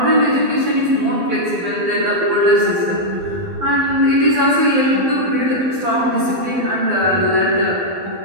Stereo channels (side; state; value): left; late; 12 ms